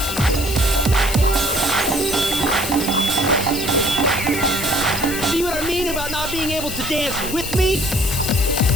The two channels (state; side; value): noise; left; hiss, 7 dB below the sound